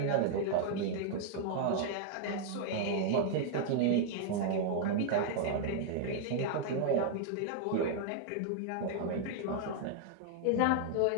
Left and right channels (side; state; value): both; different; correlation 0.00